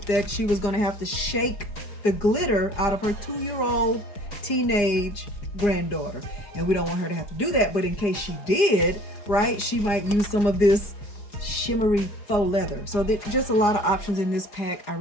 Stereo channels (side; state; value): right; late; 4.8 ms